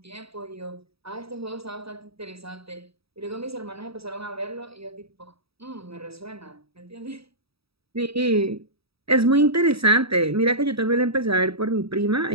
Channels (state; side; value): late; left; 0.77 ms